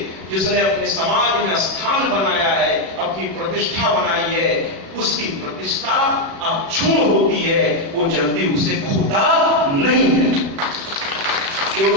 जिसने अपने समाज में स्थान बनाया है, अपनी प्रतिष्ठा बनाई है, उसकी प्रतिष्ठा अक्षुण्ण होती है, वो जल्दी उसे खोता नहीं है,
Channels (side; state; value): left; late; 36 ms